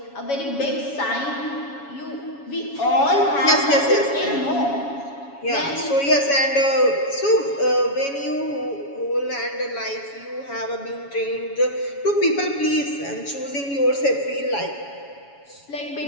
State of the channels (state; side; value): late; right; 7.2 ms